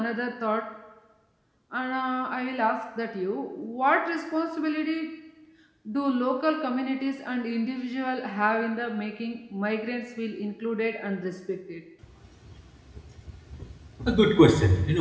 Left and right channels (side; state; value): both; identical; correlation 1.00